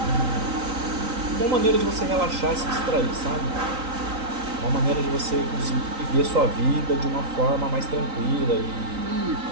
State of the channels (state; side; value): late; left; 3.9 ms